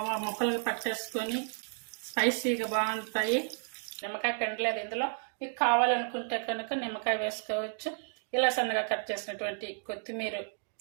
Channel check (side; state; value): left; silent; 56 dB below the other